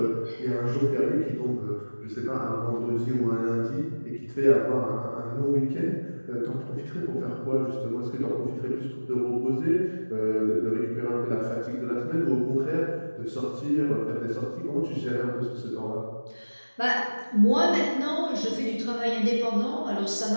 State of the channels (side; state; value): both; inverted; correlation -1.00